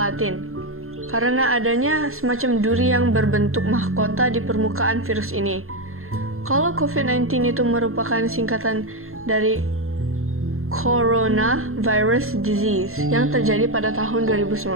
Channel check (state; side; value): late; left; 0.62 ms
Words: karena adanya semacam duri yang berbentuk mahkota di permukaan virus ini. Kalau COVID-19 itu merupakan singkatan dari Coronavirus Disease yang terjadi pada tahun